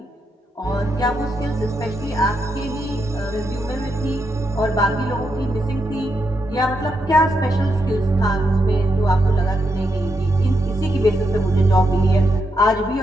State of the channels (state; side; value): normal; both; correlation 0.82